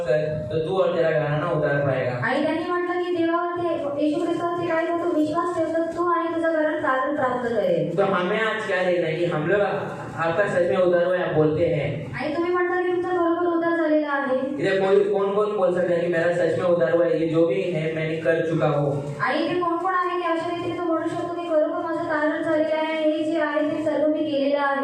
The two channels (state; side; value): identical; both; correlation 1.00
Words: कर तो तू और तेरा घराना उद्धार पाएगा। आणि त्यांनी म्हटलं की देवावरती येशू ख्रिस्तावरती काय तू विश्वास ठेव तर तू आणि तुझं घरात तारण प्राप्त करेल। तो हमें आज क्या देखना है कि हम लोग आपका सच में उद्धार हुआ है, आप बोलते हैं। आणि तुम्ही म्हणता की तुमचा बरोबर उद्धार झालेला आहे। इधर कौन बोल सकता है कि मेरा सच में उद्धार हुआ है, ये जो भी है मैंने कर चुका हूँ। आणि इथे कोण कोण आहे की अशा रीतीने तो म्हणू शकतो की खरोखर माझं तारण झालेलं आहे, हे जे आहे ते सर्व मी केलेलं